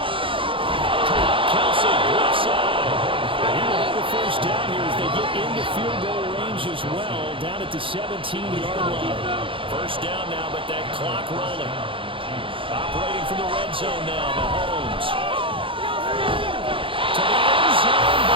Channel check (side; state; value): left; late; 0.25 ms